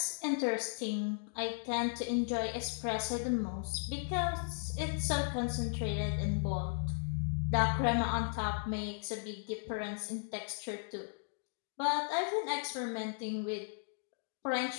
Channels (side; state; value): right; silent; digital silence